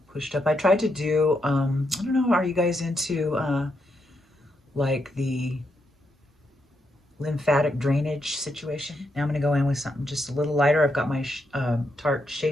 pushed up. I tried to do, I don't know, are you guys into like the lymphatic drainage situation? Now I'm going to go in with something just a little lighter. I've got my Tarte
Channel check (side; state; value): both; normal; correlation 0.81